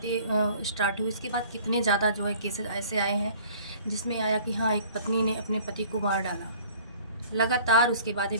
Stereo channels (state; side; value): inverted; both; correlation -0.50